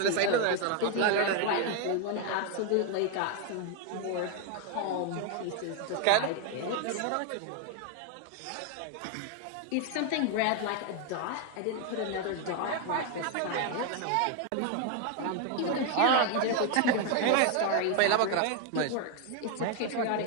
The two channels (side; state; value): both; different; correlation 0.00